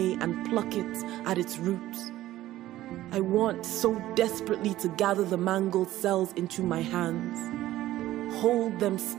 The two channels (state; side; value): quieter; left; 14.9 dB